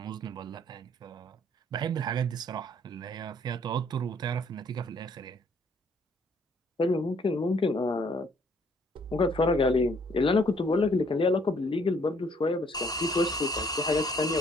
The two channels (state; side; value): normal; both; correlation 0.63